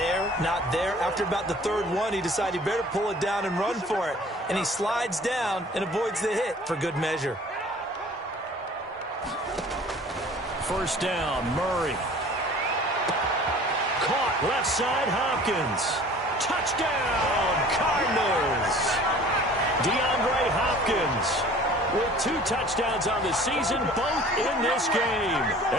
not there. After about the 3rd one, he decided he better pull it down and run for it. And he slides down and avoids the hit for good measure. 1st down, Murray. Caught left side, Hopkins. Touchdown, Cardinals. DeAndre Hopkins with 2 touchdowns on the season, both in this game.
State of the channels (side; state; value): both; normal; correlation 0.48